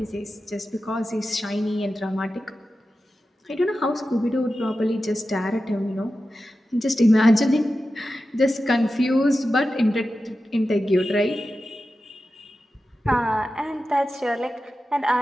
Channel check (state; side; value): normal; both; correlation 0.92